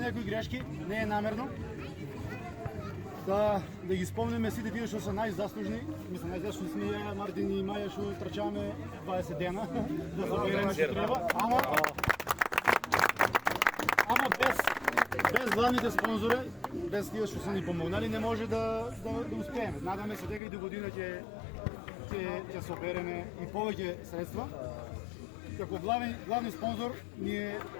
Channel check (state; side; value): drops out; right; at 20.4 s